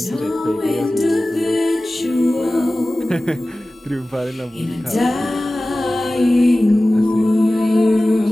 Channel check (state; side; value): normal; both; correlation 0.97